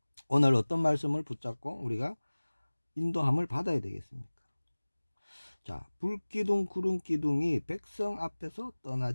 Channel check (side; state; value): both; inverted; correlation -1.00